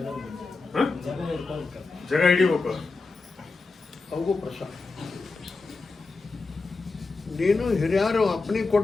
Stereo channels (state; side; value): quieter; right; 3.9 dB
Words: ಜಾಗ ಹಿಡಿಬೇಕು. ಅವಗೂ ಪ್ರಸಾದ. ನೀನು ಹಿರಿಯರು ಅಪ್ಪನಿಗೆ